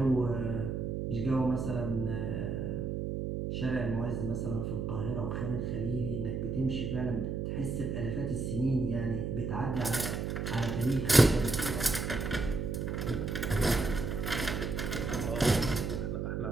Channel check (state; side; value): noise; right; hum, 2 dB below the sound